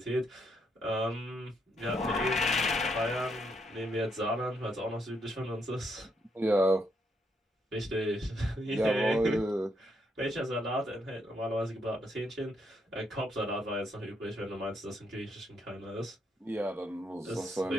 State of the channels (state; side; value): normal; both; correlation 0.76